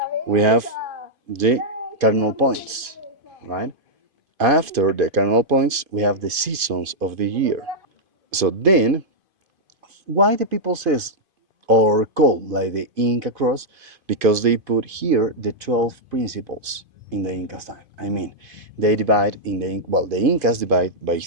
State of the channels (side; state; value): left; late; 2.5 ms